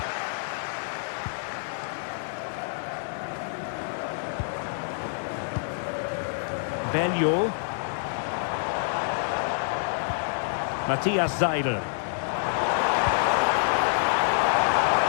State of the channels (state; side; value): silent; right; digital silence